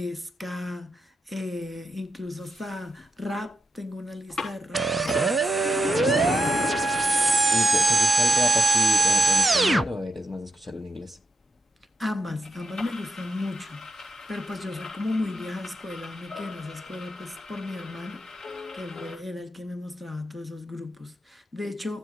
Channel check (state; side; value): normal; both; correlation 0.85